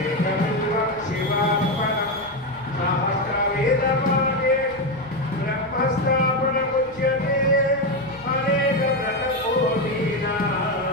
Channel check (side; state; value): left; noise; rumble, 25 dB below the sound